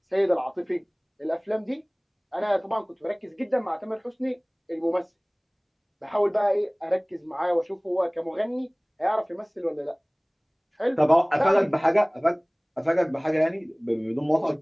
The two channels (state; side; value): identical; both; correlation 1.00